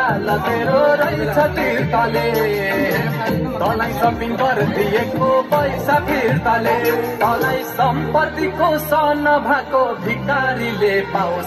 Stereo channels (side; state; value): both; identical; correlation 1.00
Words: तेरो रहेछ फिर्ताले तँलाई सपिङ गरिदिएको पैसा फिर्ताले तँलाई सम्पत्तिको सन भएको भिकारीले